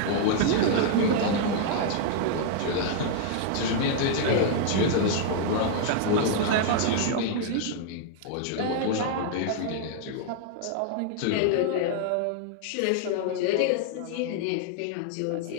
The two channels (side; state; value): both; different; correlation 0.00